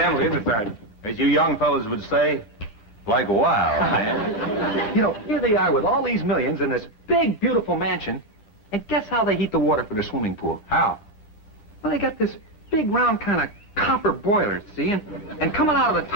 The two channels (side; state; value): right; late; 9.8 ms